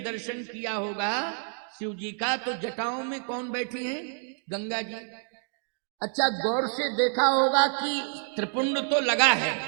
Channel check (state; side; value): silent; left; 56 dB below the other